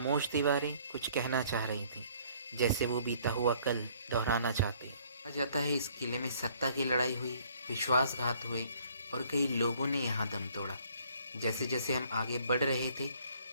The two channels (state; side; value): inverted; both; correlation -0.60